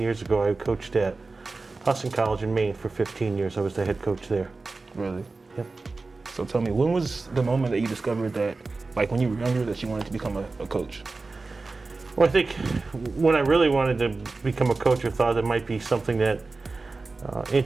years ago, I coached at Hudson College in Maine for 15 years. I was the head coach there. Really? Yep. So tell me, when was the moment that you discovered that, like when you were younger, that you wanted to become a coach? Well, I think when I really wanted to become a coach or thought it might be something that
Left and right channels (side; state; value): left; quieter; 3.7 dB